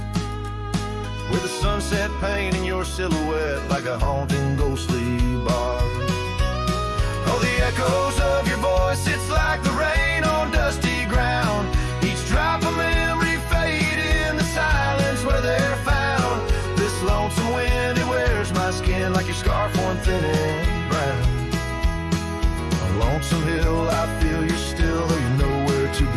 With the sunset painting your silhouette like a haunting ghostly bar. Oh, the echoes of your voice, it's like the rain on dusty ground. Each drop of memory fade in the silence where they're found. This lonesome wind, it wears my skin like your scarf worn thin and brown. On Lonesome Hill, I feel you're still, though you're nowhere to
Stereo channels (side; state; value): both; identical; correlation 1.00